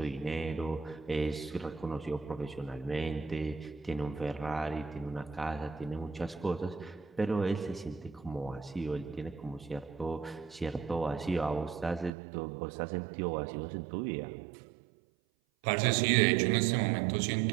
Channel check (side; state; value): left; drops out; at 12.1 s